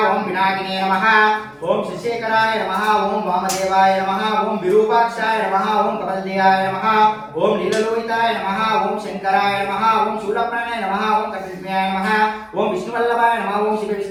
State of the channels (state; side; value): identical; both; correlation 1.00